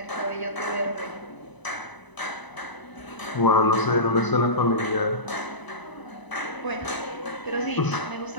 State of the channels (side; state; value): right; late; 1.0 ms